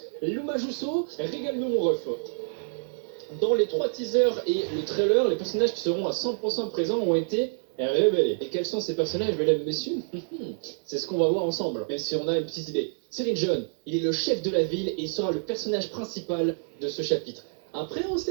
Luma Jusso, régale-nous mon ref. Dans les 3 teasers et le trailer, les personnages qui seront à 100% présents ont été révélés. Et quels sont ces personnages, mesdames et messieurs? C'est ce qu'on va voir ensemble, même si on a une petite idée. Cyril John, il est le chef de la ville et il sera le personnage principal de ce chapitre. Après, on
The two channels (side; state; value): left; silent; digital silence